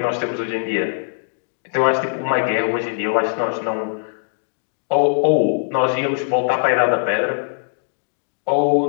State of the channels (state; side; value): silent; right; digital silence